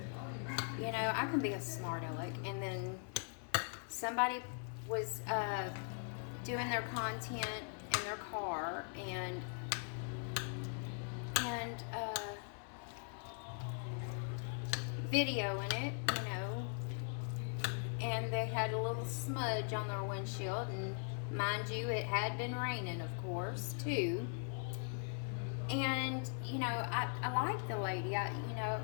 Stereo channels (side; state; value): right; silent; 51 dB below the other